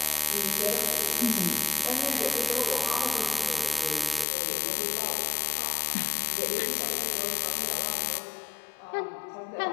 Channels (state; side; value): drops out; right; at 4.2 s